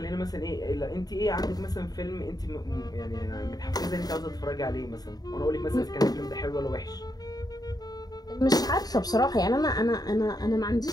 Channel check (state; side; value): late; right; 0.19 ms